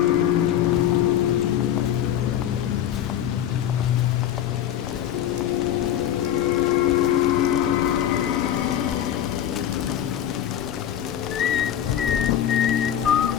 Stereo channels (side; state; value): right; quieter; 10.7 dB